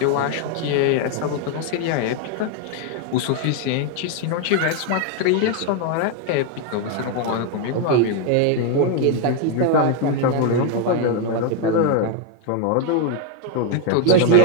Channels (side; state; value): both; different; correlation 0.01